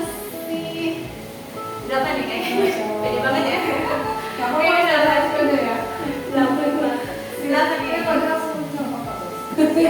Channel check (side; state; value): both; identical; correlation 1.00